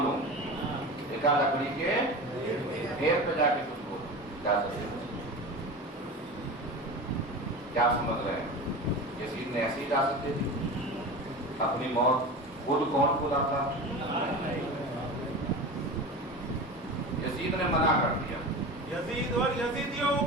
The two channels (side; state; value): both; normal; correlation 0.30